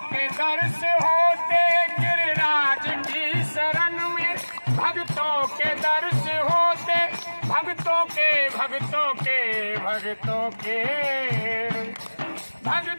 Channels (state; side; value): inverted; both; correlation -1.00